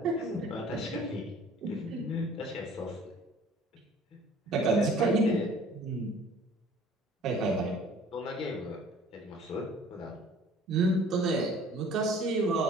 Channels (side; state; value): both; normal; correlation 0.51